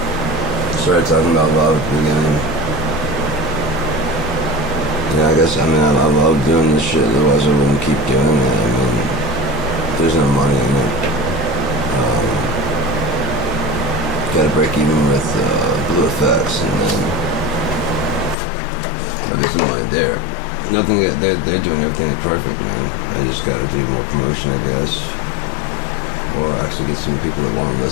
Started talking about love at the beginning. Yeah, I guess, I love doing this shit, otherwise I wouldn't keep doing it. There's no money in it. Gotta break even with Blue Effects, and then there's no money there. Nothing, they're doing everything perfect, man. I just gotta do more promotion, I guess. Or actually get some people that want to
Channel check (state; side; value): drops out; right; at 18.4 s